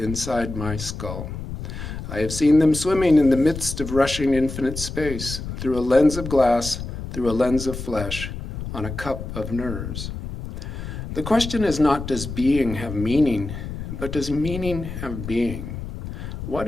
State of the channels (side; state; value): left; noise; rumble, 8 dB below the sound